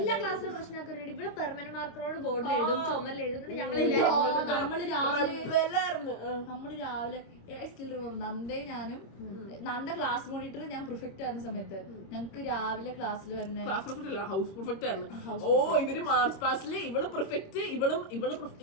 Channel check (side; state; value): right; late; 26 ms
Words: ക്ലാസ്സിലും പ്രശ്നമാക്കുന്നുണ്ട്. ഇവിടെ പെർമനന്റ് മാർക്കറോട് ബോർഡിൽ എഴുതും, ചുമരിൽ എഴുതും. ഞങ്ങളെല്ലാരും നമ്മള് രാവിലെ നന്ദയും ഞാനും നന്ദ ക്ലാസ് മോണിറ്റർ, ഞാൻ പ്രിഫെക്റ്റ് ആയിരുന്ന സമയത്ത് ഞങ്ങക്ക് രാവിലെ ക്ലാസ്സിൽ വരുന്ന ക്ലാസ് പെർഫെക്റ്റ് അല്ല, ഹൗസ് പെർഫെക്റ്റ് ആയിരുന്നു. ഓ ഇവര് മാർച്ച് പാസ്റ്റില് ഇവള് പെർഫെക്റ്റ്, ഇവളും